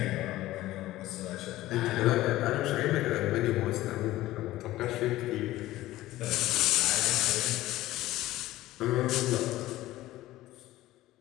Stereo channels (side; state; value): right; quieter; 16.2 dB